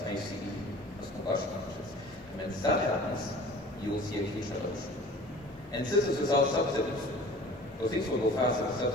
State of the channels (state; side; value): normal; both; correlation 0.44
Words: ICE, as combustion engines. And when that happens, you will see a huge revolution. And this is without subsidies. So things will go faster with